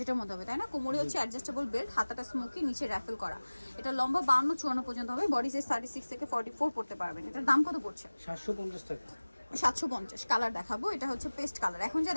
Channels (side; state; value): both; inverted; correlation -1.00